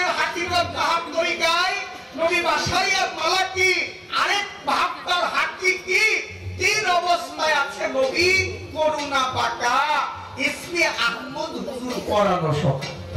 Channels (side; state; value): both; identical; correlation 1.00